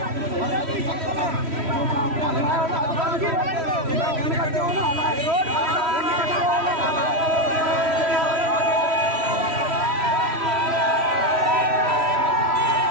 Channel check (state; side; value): late; left; 3.1 ms